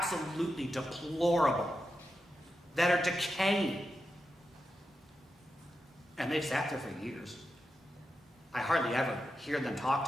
deplorable, that are decaying. And they've sat there for years. I hardly ever hear them talked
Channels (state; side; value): normal; both; correlation 0.88